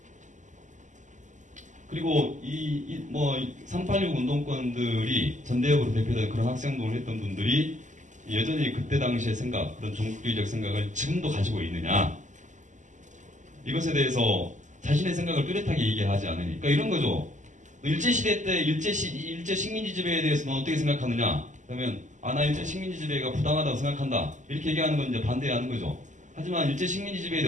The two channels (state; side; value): late; left; 0.36 ms